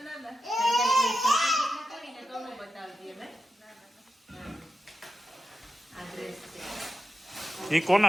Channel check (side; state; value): both; normal; correlation 0.90